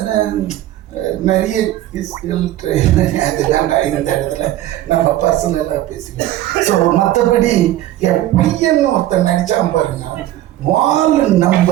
நிறைய அது வேண்டாம் இந்த இடத்துல நம்ம பர்சனலாக பேசிக்கலாம். ஸோ மற்றபடி என் பையன் ஒருத்தன் நடிச்சான் பாருங்க. வால்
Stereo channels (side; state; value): left; quieter; 14.1 dB